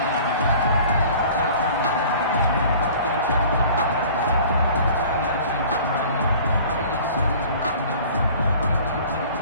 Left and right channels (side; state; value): both; inverted; correlation -0.47